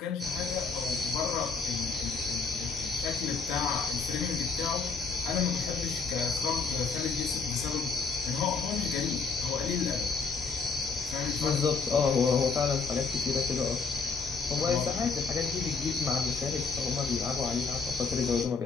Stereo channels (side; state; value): right; quieter; 4.7 dB